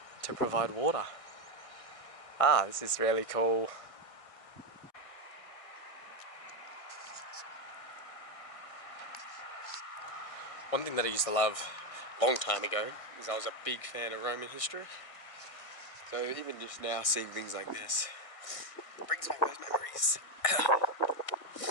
to provide water. This is really cool. One thing that I used to love a long time ago is I was a big fan of Roman history. So even just now seeing things like this brings back those memories.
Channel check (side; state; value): right; late; 1.6 ms